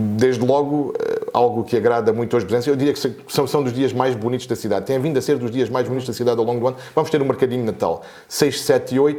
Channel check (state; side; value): identical; both; correlation 1.00